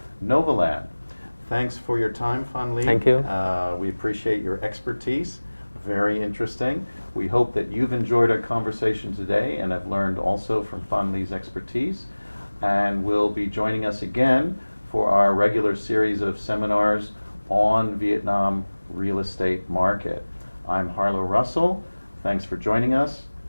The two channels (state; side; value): inverted; both; correlation -1.00